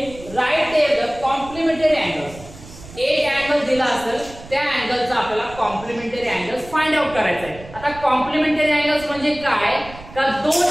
write there the complementary angles. एक अँगल दिला असेल त्या अँगलचा आपल्याला कॉम्प्लिमेंटरी अँगल्स फाइंड आउट करायचा आहे। आता कॉम्प्लिमेंटरी अँगल्स म्हणजे काय, का दोन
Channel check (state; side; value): noise; right; rumble, 17 dB below the sound